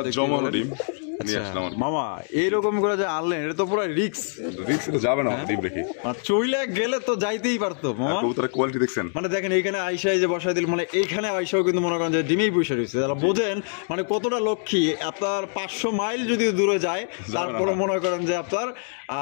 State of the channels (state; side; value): silent; right; 57 dB below the other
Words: ডিম। মামা এইরকম করে যে আনলেন, এটা তো পুরো রিক্স যাবে না ডিম রেখে, চইলে গেলে তো যাইতেই পারতো মামা। কবুতরের কোয়ালিটি দেখছেন, মানে দেখেন এইখানে আইসাই যে বসাই দিল, মানে এইখানে আইসাও কিন্তু মনে করেন যে ডিমেই বসে রয়েছে, তাহলে বোঝেন মানে কতটা লক্ষ্মী। আপনার 500 মাইল যদি দূরে যায় তারপরে মনে করেন যে আপনার